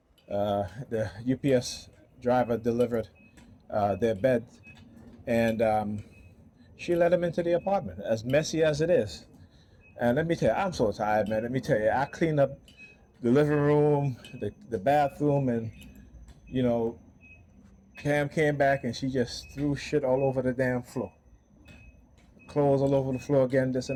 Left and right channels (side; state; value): both; identical; correlation 1.00